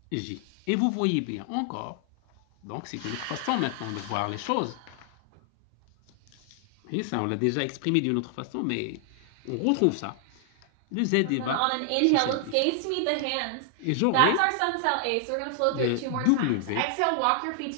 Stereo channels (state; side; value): different; both; correlation 0.00